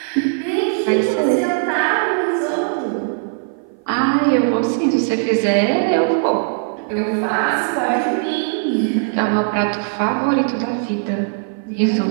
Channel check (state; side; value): silent; left; 57 dB below the other